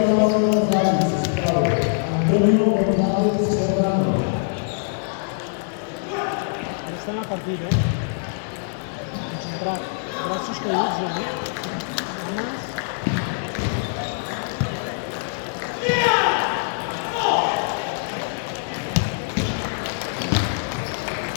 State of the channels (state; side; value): silent; right; digital silence